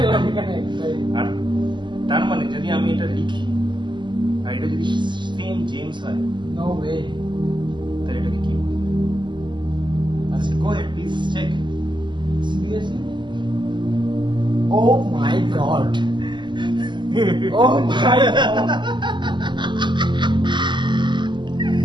এখানে। আর তার মানে যদি আমি এটা লিখি আর এটা যদি সেম জেমস হয়, নো ওয়ে। তাহলে এটাকে কি বলবো? আচ্ছা, go ahead please check. Seriously? Oh my God. Oh my god.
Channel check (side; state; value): left; late; 0.22 ms